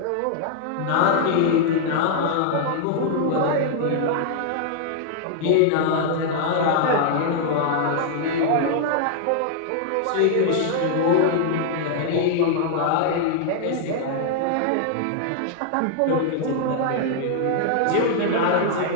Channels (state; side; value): different; both; correlation 0.00